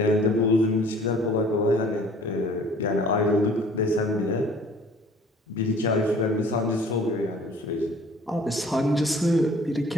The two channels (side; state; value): both; normal; correlation 0.52